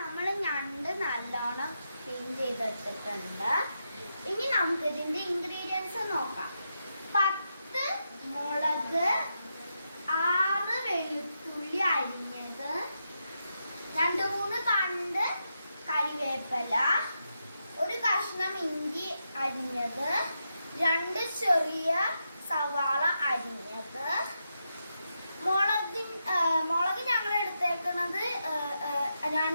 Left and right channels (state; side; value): inverted; both; correlation -0.85